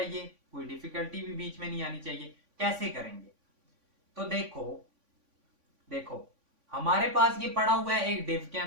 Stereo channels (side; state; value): left; late; 3.5 ms